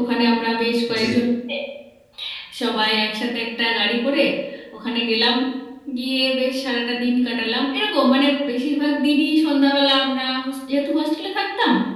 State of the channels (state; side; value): identical; both; correlation 1.00